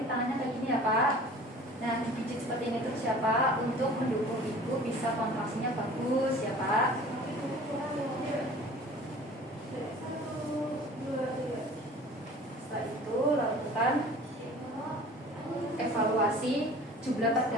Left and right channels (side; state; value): both; normal; correlation 0.45